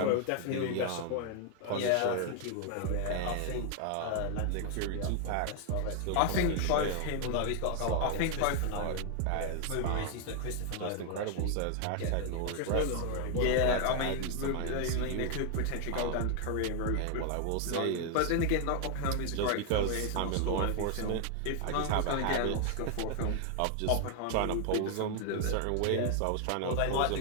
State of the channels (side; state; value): both; different; correlation 0.00